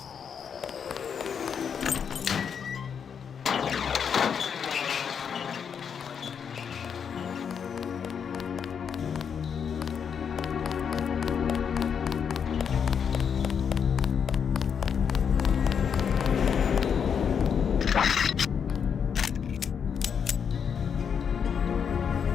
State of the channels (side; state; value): right; quieter; 7.2 dB